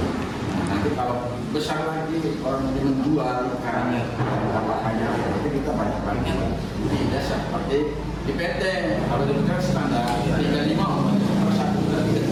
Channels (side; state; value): both; identical; correlation 1.00